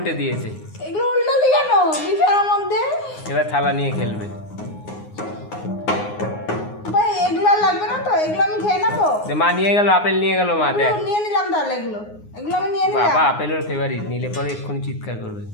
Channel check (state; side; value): late; right; 9.6 ms